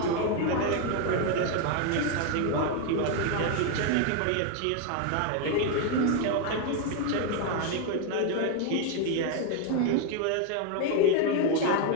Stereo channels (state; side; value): different; both; correlation 0.01